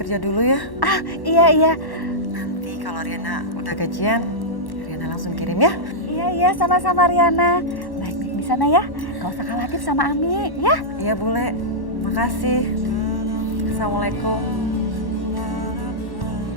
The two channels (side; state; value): right; late; 1.1 ms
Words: dulu ya. Ah, iya. Nanti kalau Riana udah gajian, Riana langsung kirim ya. Iya, sama-sama Riana. Baik-baik di sana ya. Gak usah khawatir sama Ami, ya. Iya bule, makasih. Assalamualaikum.